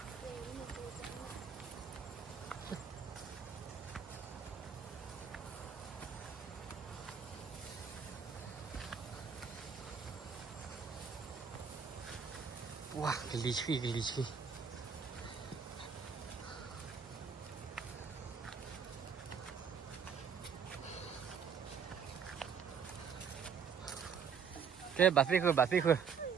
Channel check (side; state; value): left; quieter; 6.7 dB